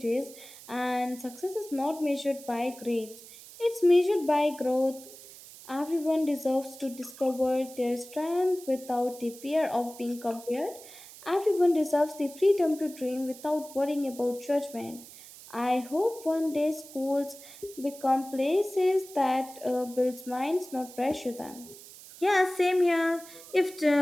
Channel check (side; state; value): right; noise; hiss, 18 dB below the sound